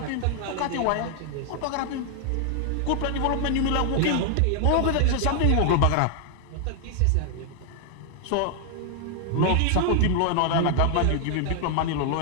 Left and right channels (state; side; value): different; both; correlation 0.00